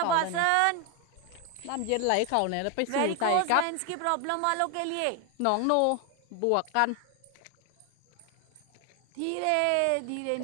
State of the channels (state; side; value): different; both; correlation 0.01